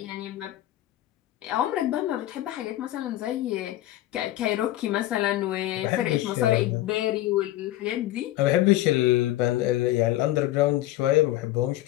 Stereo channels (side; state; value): right; quieter; 14.9 dB